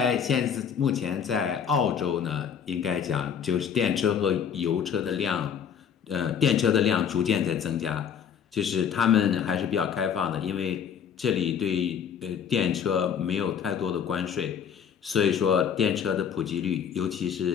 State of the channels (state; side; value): quieter; right; 7.8 dB